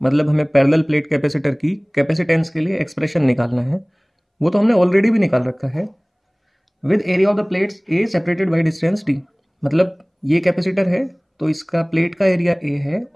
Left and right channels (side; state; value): both; identical; correlation 1.00